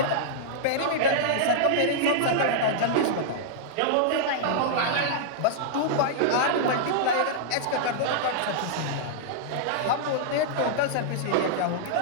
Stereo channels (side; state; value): both; different; correlation -0.02